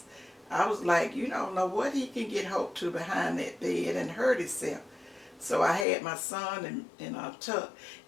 I was like, you don't know what he can get hooked to behind that bed and hurt himself. So I had my son in a tub.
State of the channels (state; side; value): drops out; right; at 5.9 s